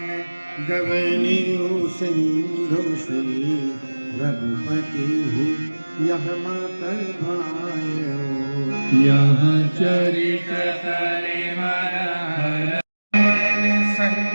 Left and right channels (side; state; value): both; inverted; correlation -1.00